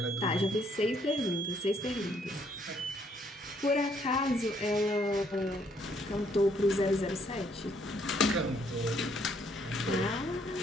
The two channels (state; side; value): normal; both; correlation 0.68